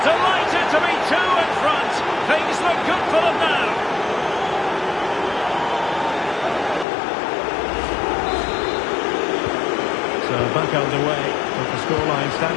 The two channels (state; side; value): drops out; right; at 6.9 s